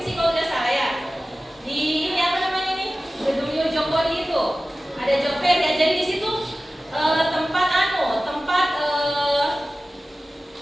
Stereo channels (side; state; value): both; normal; correlation 0.96